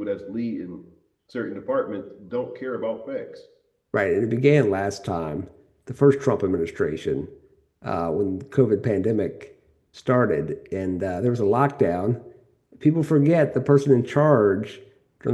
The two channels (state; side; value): identical; both; correlation 1.00